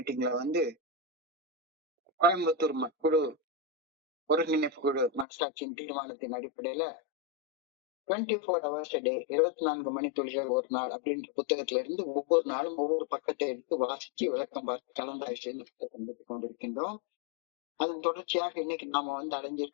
கோயம்புத்தூர் குழு ஒருங்கிணைப்பு குழு மனசாட்சியின் தீர்மானத்தின் அடிப்படையில 24 hours a day 24 மணித்துளிகள் ஒரு நாள் அப்படின்ற புத்தகத்துல இருந்து ஒவ்வொரு நாளும் ஒவ்வொரு பக்கத்தை எடுத்து வாசிச்சு விளக்கம் பார்த்து கலந்தாய்வு செய்து புத்தகம் கொண்டிருக்கின்றோம். அதன் தொடர்ச்சியாக இன்னைக்கு நாம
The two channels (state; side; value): drops out; right; at 5.2 s